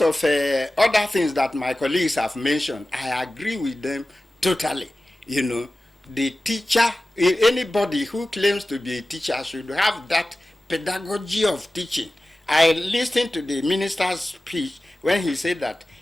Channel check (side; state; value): both; normal; correlation 0.96